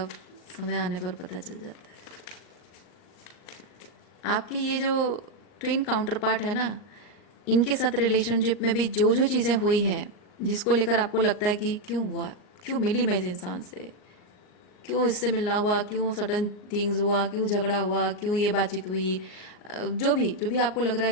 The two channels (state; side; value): late; right; 39 ms